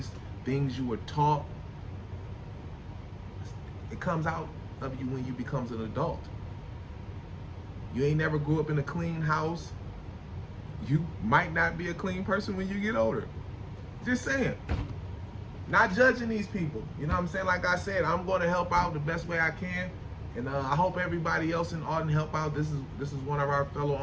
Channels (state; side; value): identical; both; correlation 1.00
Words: things you were taught, it comes out of you when you become an adult. You ain't never grew up in a clean house. You might not be a clean person when you get older. Just saying. Not judging these people. You know what I'm saying? Like I said, I'm going to help out the best way I can. And I hope everybody else in Arden help out. This is one of our fellow